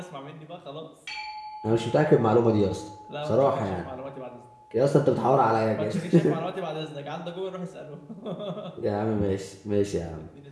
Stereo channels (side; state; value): both; identical; correlation 1.00